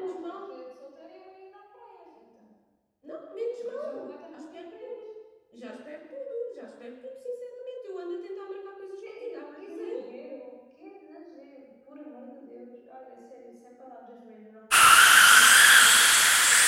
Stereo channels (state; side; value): identical; both; correlation 1.00